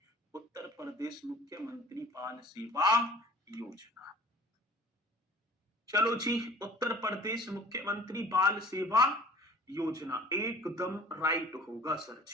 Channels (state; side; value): normal; both; correlation 0.48